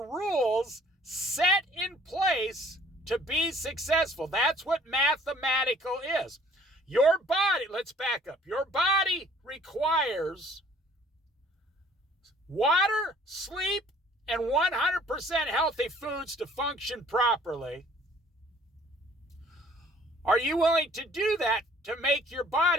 rules set in place to be successful? That's what mathematical is. Your body, let's back up. Your body requires water, sleep, and 100% healthy foods to function properly. Are you willing to do that to make your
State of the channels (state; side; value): normal; both; correlation 0.57